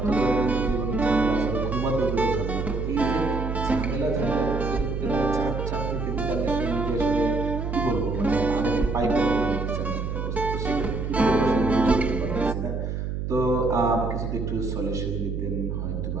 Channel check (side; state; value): right; noise; hum, 3 dB below the sound